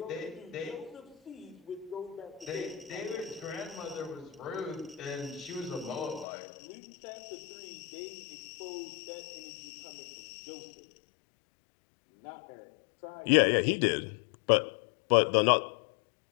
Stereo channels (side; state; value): right; drops out; at 6.2 s